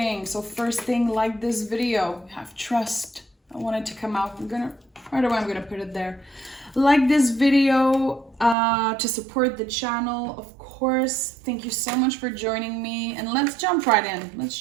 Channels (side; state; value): left; drops out; at 8.6 s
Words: So first thing, like this video. Have trust. I want it to come out. Right away, I'm gonna put it there. Like this video to support the channel, of course. Thank you so much for joining me. And let's jump right in.